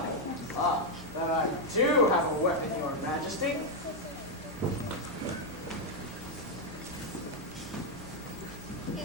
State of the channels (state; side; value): normal; both; correlation 0.01